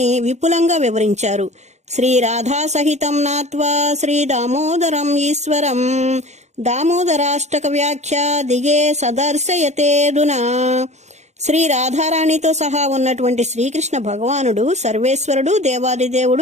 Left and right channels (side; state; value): left; late; 0.33 ms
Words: విపులంగా వివరించారు. శ్రీ రాధా సహితం నాత్వా శ్రీ దామోదరం ఈశ్వరం దామోదరాష్టక వ్యాఖ్య దిగే సదర్శయతేదునా. శ్రీ రాధారాణితో సహా ఉన్నటువంటి శ్రీకృష్ణ భగవానుడు సర్వేశ్వరుడు, దేవాదిదేవుడు,